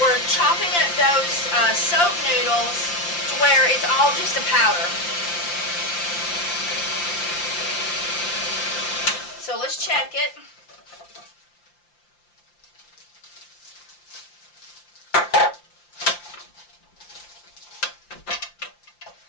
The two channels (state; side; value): late; right; 5.8 ms